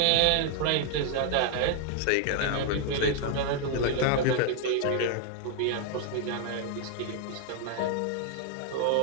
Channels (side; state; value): both; different; correlation 0.00